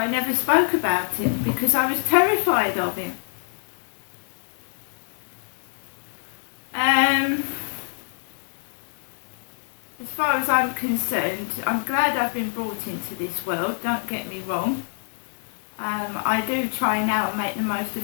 never spoke about him, because I was terrified of him. As far as I'm concerned, I'm glad I've been brought into this world, don't get me wrong. I do try now and make the most of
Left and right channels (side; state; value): right; silent; digital silence